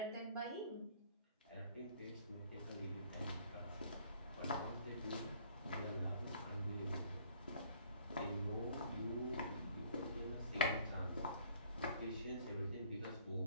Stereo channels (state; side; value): inverted; both; correlation -0.59